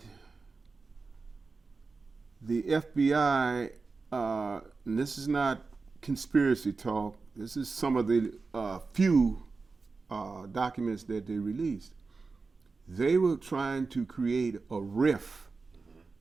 the FBI, and this is not conspiracy talk, this is some of the few documents that they released. They were trying to create a rift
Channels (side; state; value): left; quieter; 4.2 dB